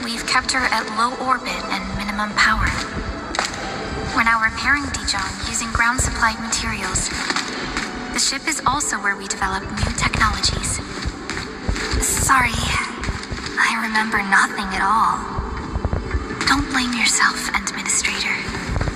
we've kept her at low orbit and minimum power. We're now repairing Dijong using ground-supplied materials. The ship is also where we develop new technologies. Sorry. I remember nothing at all. Don't blame yourself, Administrator.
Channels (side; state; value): both; identical; correlation 1.00